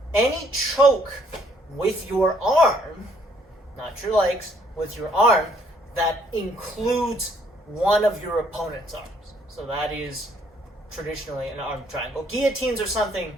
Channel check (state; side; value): normal; both; correlation 0.66